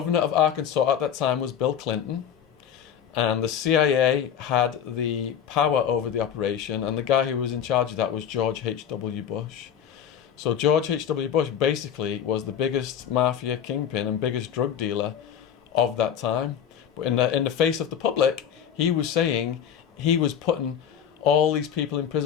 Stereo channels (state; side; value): quieter; right; 8.8 dB